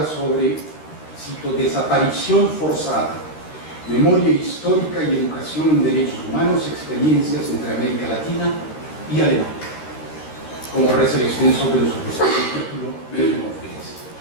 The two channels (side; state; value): right; late; 13 ms